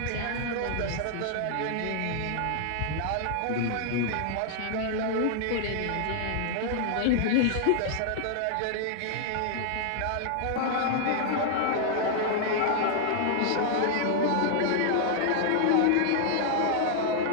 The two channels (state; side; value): different; both; correlation -0.01